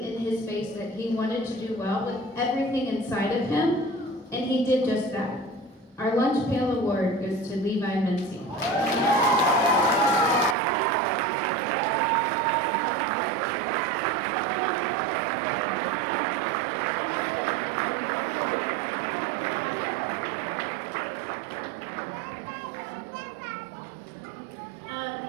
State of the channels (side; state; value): left; drops out; at 10.6 s